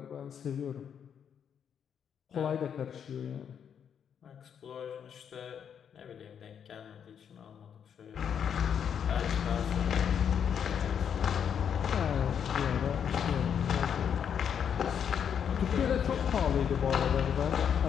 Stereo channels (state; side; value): quieter; right; 8.0 dB